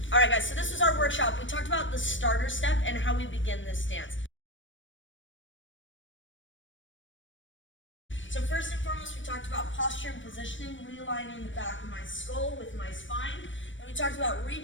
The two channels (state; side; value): late; right; 0.56 ms